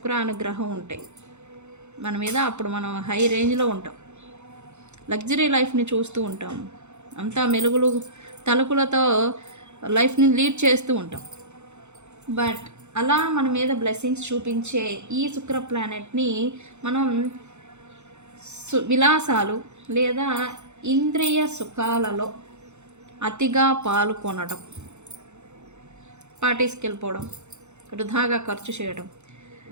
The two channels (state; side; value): late; left; 0.83 ms